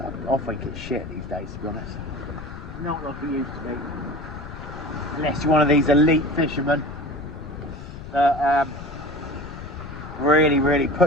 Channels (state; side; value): noise; left; rumble, 12 dB below the sound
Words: I think it's shit these days, to be honest. Not like it used to be. Unless you're one of these elite fishermen that really